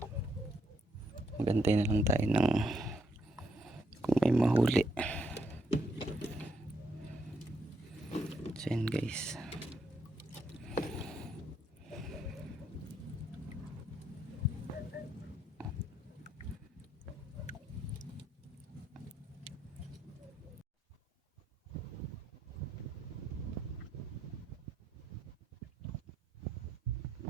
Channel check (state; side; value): normal; both; correlation 0.76